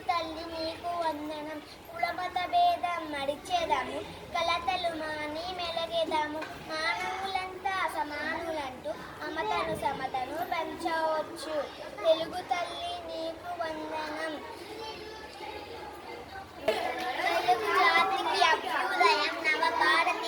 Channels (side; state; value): both; identical; correlation 1.00